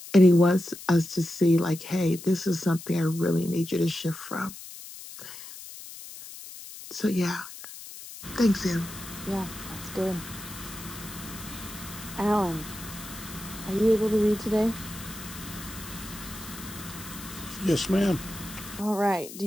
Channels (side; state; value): left; noise; hiss, 13 dB below the sound